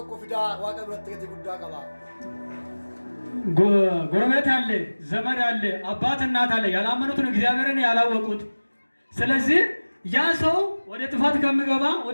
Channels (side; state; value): both; inverted; correlation -1.00